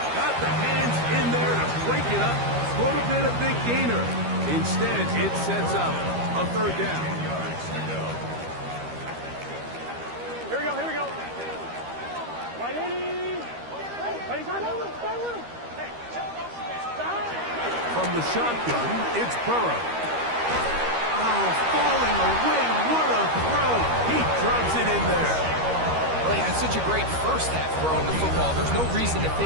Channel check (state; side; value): late; left; 13 ms